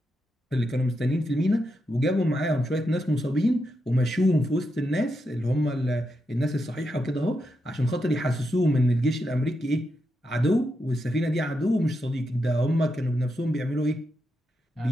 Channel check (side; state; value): both; normal; correlation 0.85